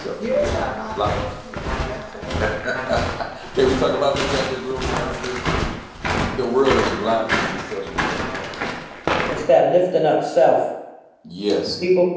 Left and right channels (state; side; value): identical; both; correlation 1.00